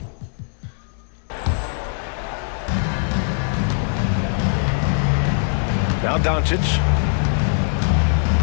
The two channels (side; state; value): right; silent; digital silence